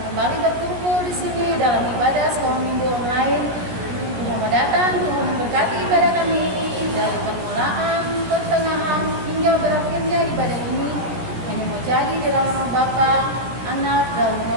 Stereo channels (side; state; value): left; late; 16 ms